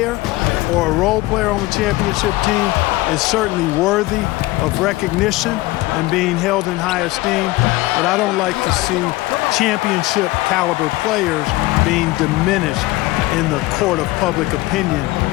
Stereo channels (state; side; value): quieter; right; 19.5 dB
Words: or a role player on the championship team is certainly worthy of recognition and being held in high esteem, but I don't like to see championship caliber players being diminished in the court of public opinion